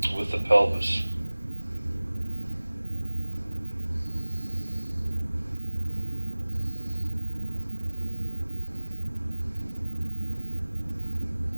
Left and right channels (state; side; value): inverted; both; correlation -1.00